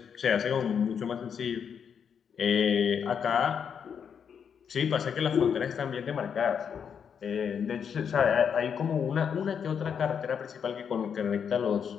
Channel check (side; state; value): right; quieter; 7.3 dB